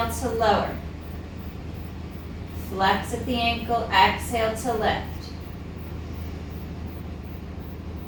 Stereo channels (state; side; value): identical; both; correlation 1.00